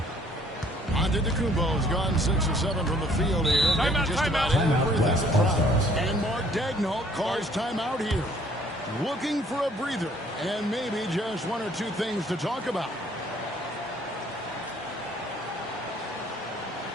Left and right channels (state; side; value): normal; both; correlation 0.60